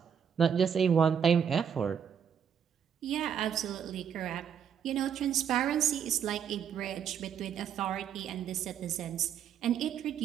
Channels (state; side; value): quieter; left; 8.0 dB